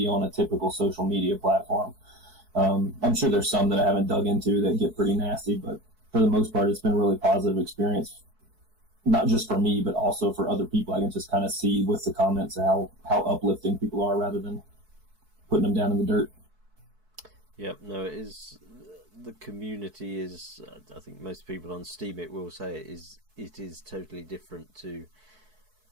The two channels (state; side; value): late; left; 4.6 ms